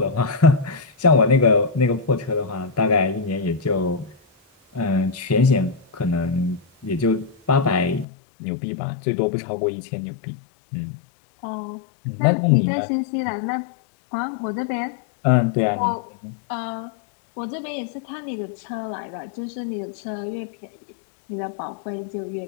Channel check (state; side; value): drops out; right; at 8.1 s